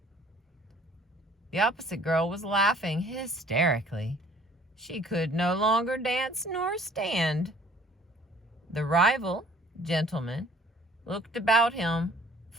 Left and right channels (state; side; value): normal; both; correlation 0.55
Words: The opposite girl was laughing hysterically. She could no longer dance nor stand. The rival gentleman looked about him